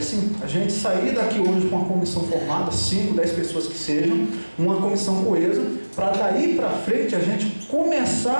A gente sair daqui hoje com uma comissão formada, 5, 10 pessoas que sejam, uma comissão coesa, para daí para frente a gente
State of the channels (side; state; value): both; inverted; correlation -1.00